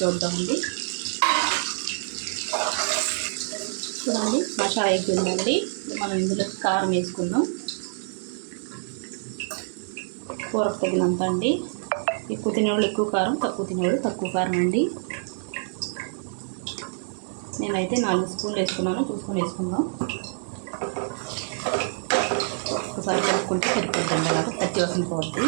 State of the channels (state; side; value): silent; left; digital silence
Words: చూద్దామండి. చూడండి, మసాలా అయిపోయిందండి. మనం ఇందులో కారం వేసుకుందాం. కూరకు తగినంత అండి. ఎక్కువ తినేవాళ్ళు ఎక్కువ కారం, తక్కువ తినేవాళ్ళు తక్కువ కారం అండి. నేనైతే 4 స్పూన్లు వేసుకున్నాను. చూసుకొని వేసుకుందాం. ఒకసారి కలుపుకుంటే సరిపోద్దండి. అలాగా పచ్చి వాసన పోద్ది.